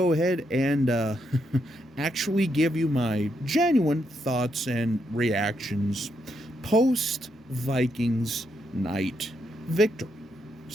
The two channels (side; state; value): both; normal; correlation 0.79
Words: ahead and actually give you my genuine thoughts and reactions post Vikings night victory.